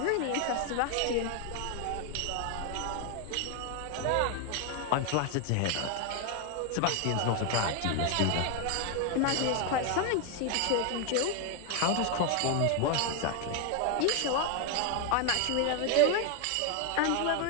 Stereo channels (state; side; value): different; both; correlation 0.01